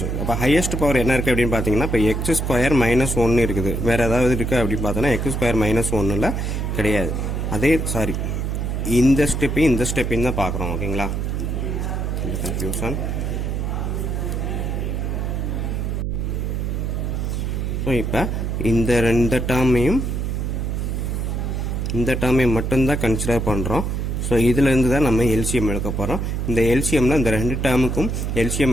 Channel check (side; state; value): right; noise; hum, 1 dB below the sound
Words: அப்போ ஹையஸ்ட் பவர் என்ன இருக்குது அப்படின்னு பார்த்தீங்கன்னா, இப்போ எக்ஸ் ஸ்கொயர் மைனஸ் 1 இருக்குது. வேறு ஏதாவது இருக்குது அப்படின்னு பார்த்தோன்னா எக்ஸ் ஸ்கொயர் மைனஸ் 1 கிடையாது. இந்த ஸ்டெப்பையும் தான் பார்க்குறோம். ஓகேங்களா? கன்ஃபியூஷன். ஸோ இப்போ இந்த டேர்மையும் மட்டும்தான் கன்சிடர் பண்ணுறோம். ஸோ இதிலேருந்து தான் நம்ம எல்சிஎம் எடுக்க போகிறோம். இந்த எல்சிஎம்ல இந்த 2 டேர்முக்கும் எல்சிஎம்